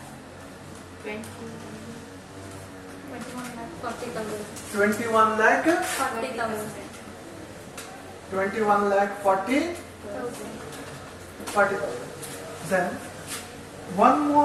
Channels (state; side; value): identical; both; correlation 1.00